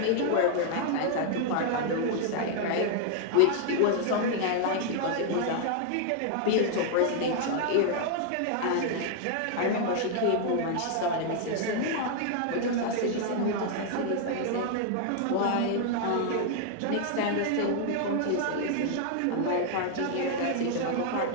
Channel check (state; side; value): different; both; correlation 0.00